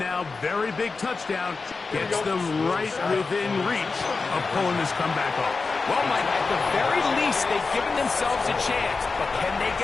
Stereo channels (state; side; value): quieter; right; 4.3 dB